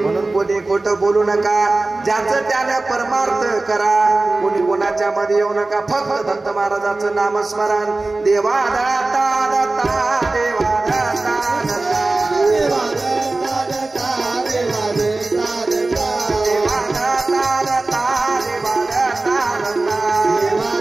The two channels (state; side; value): quieter; left; 3.2 dB